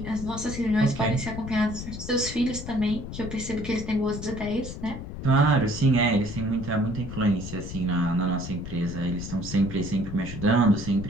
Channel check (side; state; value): left; noise; rumble, 9 dB below the sound